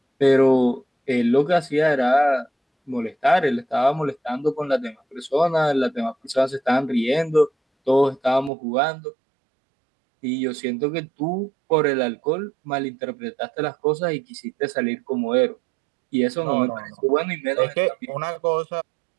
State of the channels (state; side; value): drops out; left; at 8.5 s